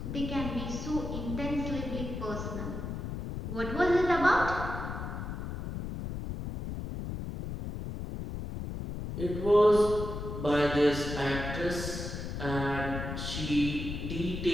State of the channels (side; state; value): left; noise; rumble, 6 dB below the sound